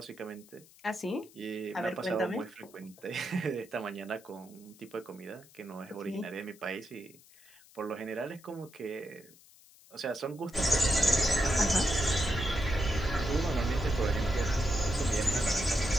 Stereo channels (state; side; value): noise; left; hiss, 25 dB below the sound